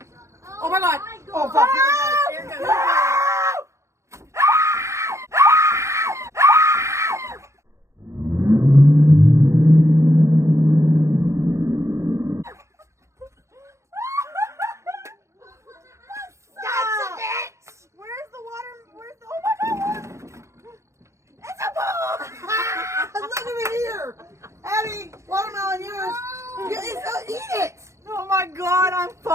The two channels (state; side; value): late; left; 0.14 ms